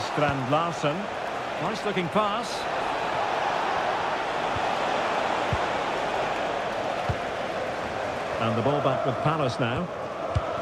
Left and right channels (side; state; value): both; identical; correlation 1.00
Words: Larsen. Nice looking pass. And the ball back with Palace now.